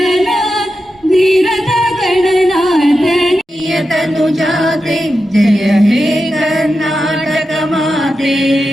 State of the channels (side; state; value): both; normal; correlation 0.90